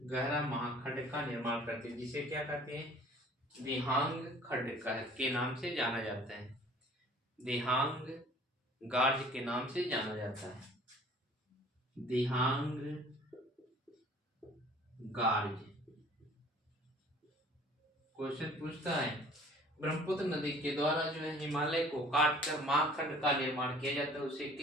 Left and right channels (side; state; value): both; normal; correlation 0.51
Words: गहरा महाखंड का निर्माण करती है, जिसे क्या कहते हैं? दिहांग खंड के नाम से जाना जाता है। दिहांग गार्ज के नाम से जाना जाता है। दिहांग गार्ज। क्वेश्चन पूछता है ब्रह्मपुत्र नदी के द्वारा जो है हिमालय को काटकर महाखंड का निर्माण किया जाता है, उसे